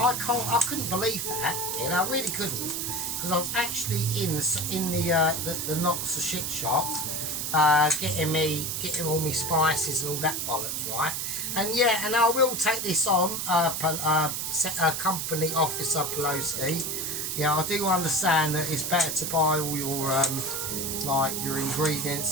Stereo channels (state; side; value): noise; right; hiss, 2 dB below the sound